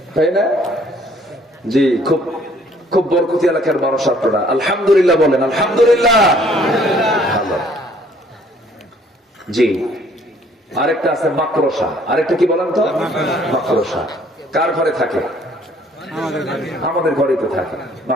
তাই না? জি, খুব খুব বরকতি এলাকার মানুষ আপনারা। আলহামদুলিল্লাহ বলেন, আলহামদুলিল্লাহ। ভালো। জি, আরেকটা আছে মাকড়সা। আরেকটা কি বলেন তো? মাকড়সা। কার ঘরে থাকে? আমাদের ঘরে তো থাকে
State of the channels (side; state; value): both; normal; correlation 0.60